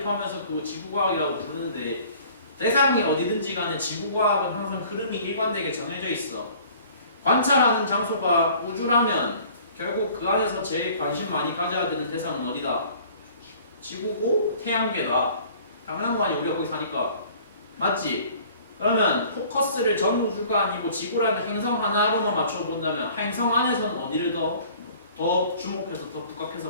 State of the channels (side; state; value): both; inverted; correlation -0.51